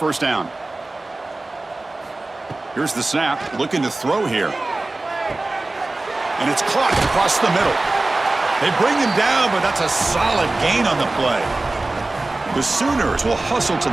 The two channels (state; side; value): quieter; left; 3.0 dB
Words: down. Here's the snap. Looking to throw here. And it's caught across the middle. They bring him down, but that's a solid gain on the play. The Sooners will hustle to